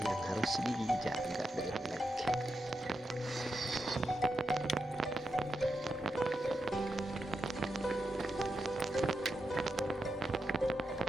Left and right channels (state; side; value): normal; both; correlation 0.87